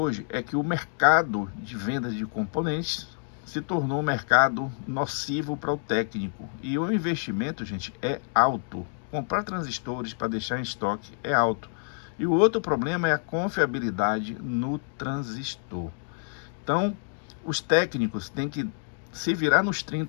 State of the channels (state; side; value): silent; right; 59 dB below the other